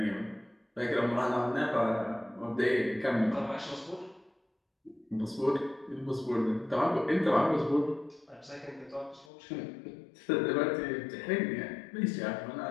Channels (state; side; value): drops out; right; at 9.3 s